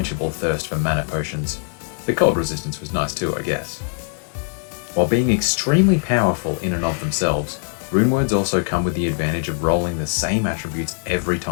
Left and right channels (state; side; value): silent; right; digital silence